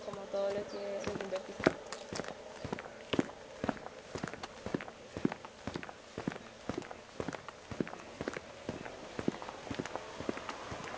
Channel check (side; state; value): both; identical; correlation 1.00